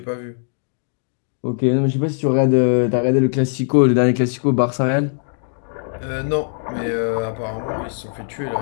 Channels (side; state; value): right; silent; digital silence